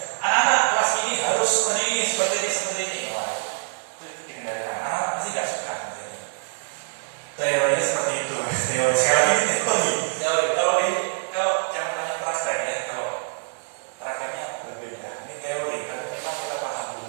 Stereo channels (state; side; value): silent; left; digital silence